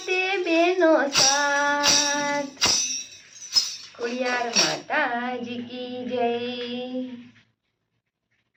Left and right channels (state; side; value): identical; both; correlation 1.00